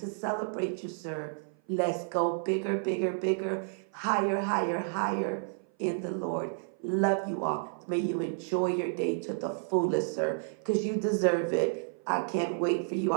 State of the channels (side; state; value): left; silent; 56 dB below the other